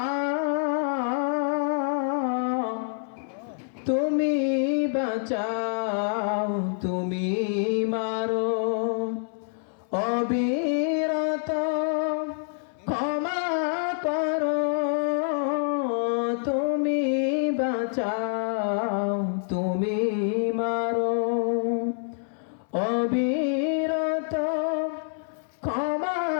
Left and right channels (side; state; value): right; silent; 60 dB below the other